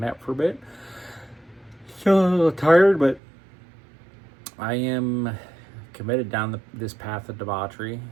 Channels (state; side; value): drops out; left; at 3.2 s